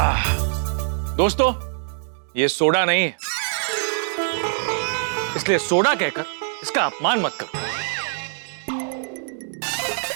दोस्तों, ये सोडा नहीं है, इसलिए सोडा कहकर इसका अपमान मत करो।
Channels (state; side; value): silent; left; digital silence